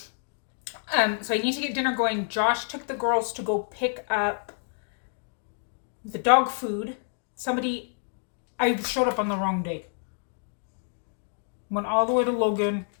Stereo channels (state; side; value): silent; right; digital silence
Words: So I need to get dinner going. Josh took the girls to go pick up the dog food. I showed up on the wrong day. Went all the way to Logan,